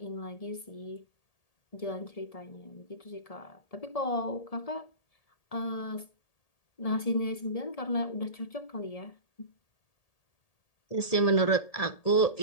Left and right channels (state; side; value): late; right; 1.8 ms